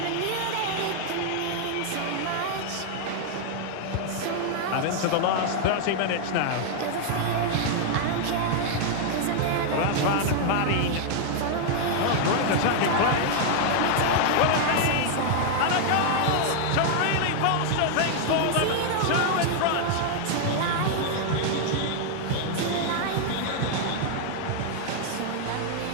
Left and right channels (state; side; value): different; both; correlation 0.00